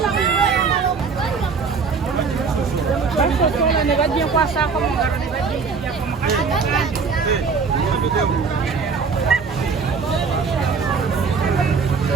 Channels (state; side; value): quieter; left; 5.2 dB